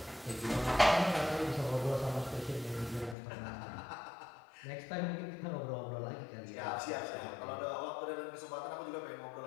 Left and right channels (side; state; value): right; drops out; at 3.2 s